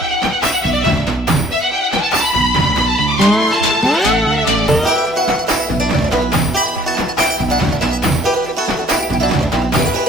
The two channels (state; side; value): normal; both; correlation 0.58